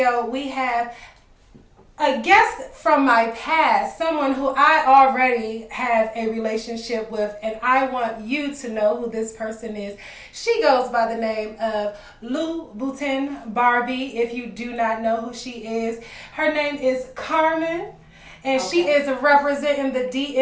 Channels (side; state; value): both; identical; correlation 1.00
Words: we have a guest from my past, someone who I already have a relationship with, and I want you to know who this person is. She goes by the name of Louboutin Barbie, if you do not know who she is. Her name is Carmen. And she is representing the